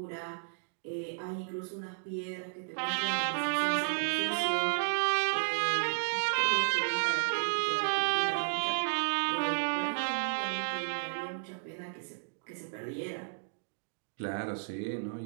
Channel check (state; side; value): silent; left; digital silence